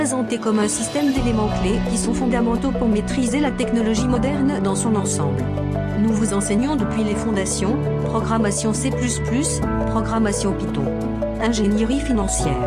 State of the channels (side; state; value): both; identical; correlation 1.00